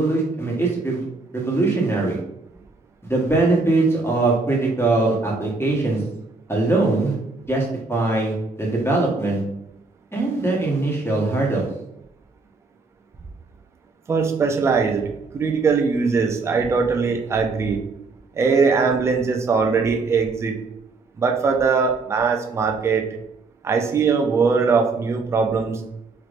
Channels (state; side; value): quieter; left; 3.7 dB